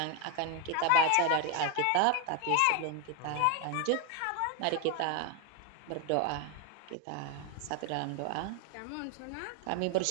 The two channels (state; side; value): different; both; correlation 0.01